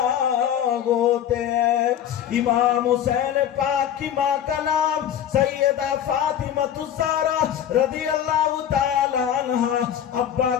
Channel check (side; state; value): right; quieter; 10.0 dB